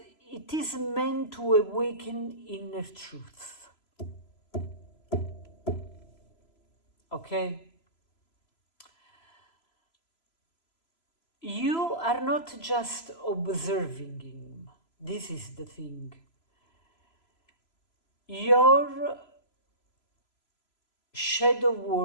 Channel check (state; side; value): late; right; 3.0 ms